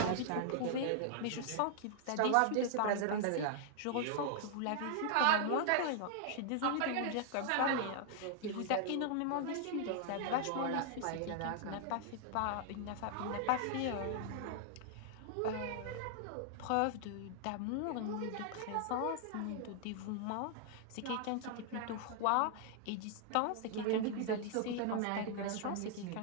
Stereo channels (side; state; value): both; different; correlation -0.01